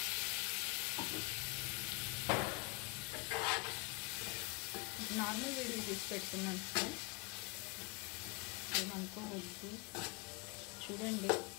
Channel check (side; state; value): right; quieter; 27.1 dB